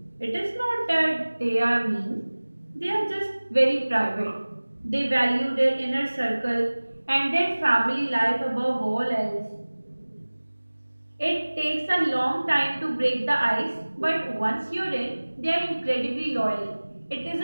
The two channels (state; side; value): inverted; both; correlation -1.00